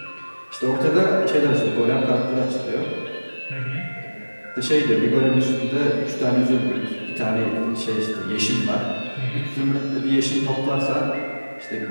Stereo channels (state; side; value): inverted; both; correlation -1.00